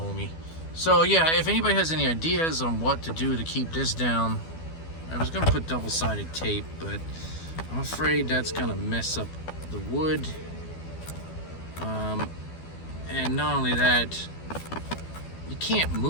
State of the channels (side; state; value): right; late; 12 ms